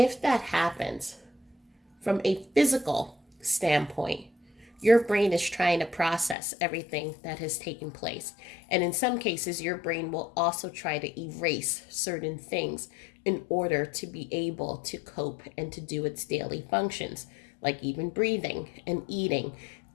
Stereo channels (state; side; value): drops out; right; at 6.4 s